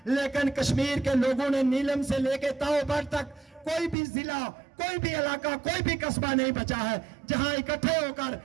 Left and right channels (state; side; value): drops out; left; at 4.0 s